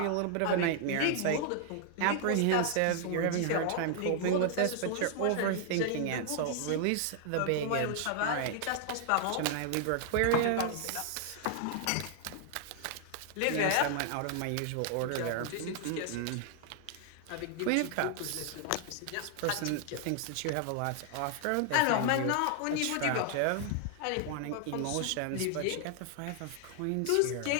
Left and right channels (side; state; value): both; different; correlation 0.00